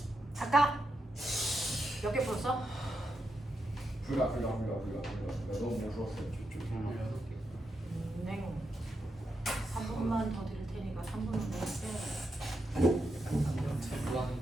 아까 몇 개 풀었어? 불가 너무 무서웠어요. 네. 3분만 더 드릴 테니까 3분은 더 했어요. 뭐 하는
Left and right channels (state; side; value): normal; both; correlation 0.85